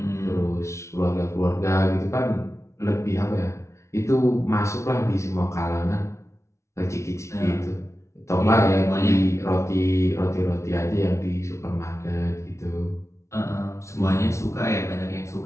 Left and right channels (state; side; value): late; right; 0.14 ms